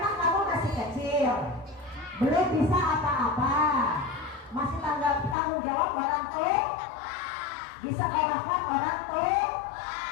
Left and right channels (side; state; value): right; drops out; at 5.4 s